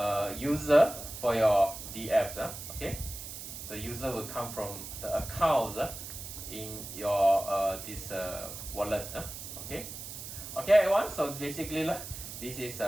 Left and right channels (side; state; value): right; noise; hiss, 10 dB below the sound